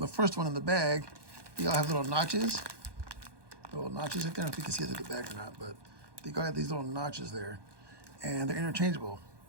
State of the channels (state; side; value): late; left; 1.2 ms